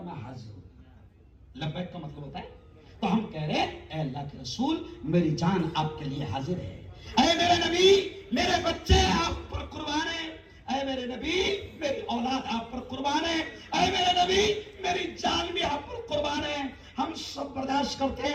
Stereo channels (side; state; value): both; identical; correlation 1.00